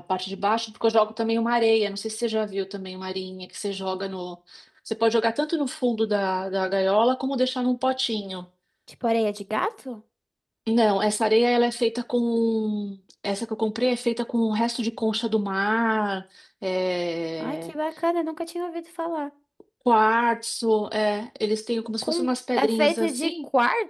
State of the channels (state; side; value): identical; both; correlation 1.00